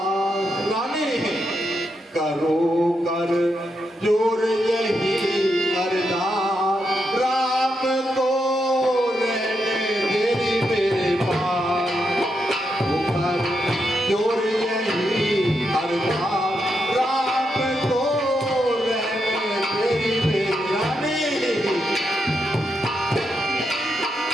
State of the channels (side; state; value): both; normal; correlation 0.82